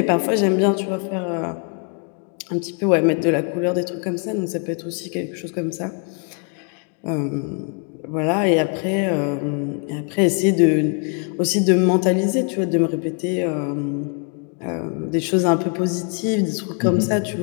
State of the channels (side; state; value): right; quieter; 39.2 dB